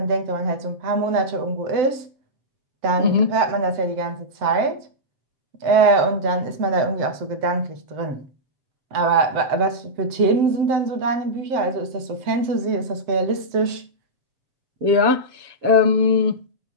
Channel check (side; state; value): left; late; 7.8 ms